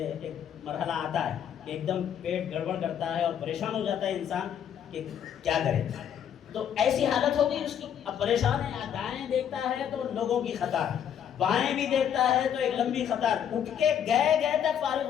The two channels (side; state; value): right; quieter; 9.0 dB